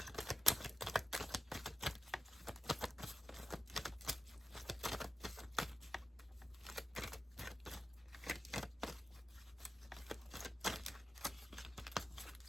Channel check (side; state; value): both; normal; correlation 0.93